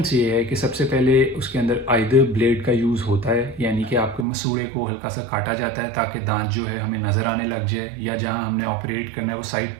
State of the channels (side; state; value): left; drops out; at 4.2 s